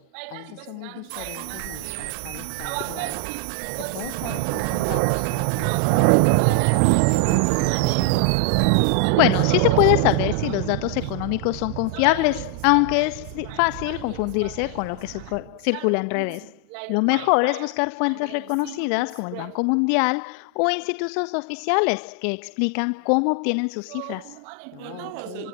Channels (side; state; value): both; different; correlation 0.00